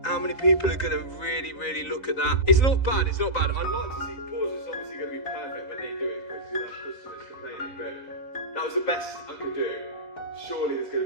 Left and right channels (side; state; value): right; late; 3.9 ms